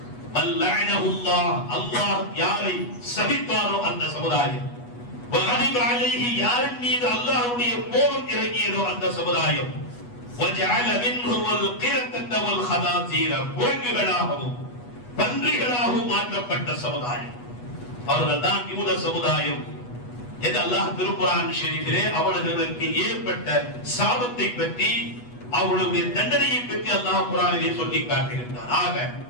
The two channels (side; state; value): right; late; 8.2 ms